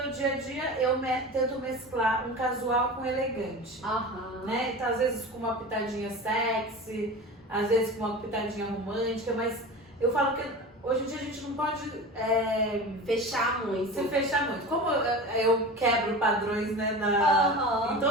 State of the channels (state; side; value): normal; both; correlation 0.32